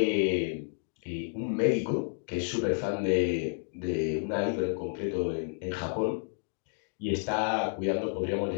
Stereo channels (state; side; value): silent; right; 57 dB below the other